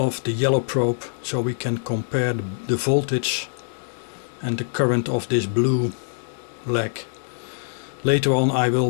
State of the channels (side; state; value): right; silent; 63 dB below the other